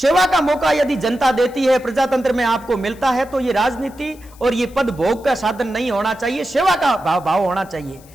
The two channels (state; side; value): noise; left; hiss, 26 dB below the sound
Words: का मौका यदि जनता देती है, प्रजातंत्र में आपको मिलता है, तो ये राजनीति और ये पद भोग का साधन नहीं होना चाहिए, सेवा का भाव होना चाहिए।